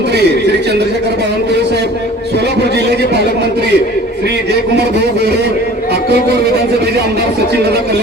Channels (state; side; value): normal; both; correlation 0.46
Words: श्री चंद्रशेखर बावनकुळे साहेब, सोलापूर जिल्ह्याचे पालकमंत्री श्री जयकुमार भाऊ गोरे, अक्कलकोट विधानसभेचे आमदार सचिनदादा